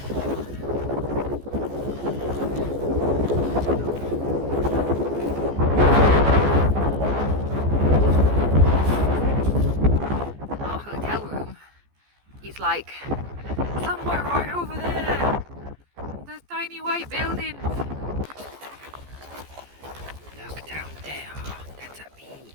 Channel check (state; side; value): late; left; 14 ms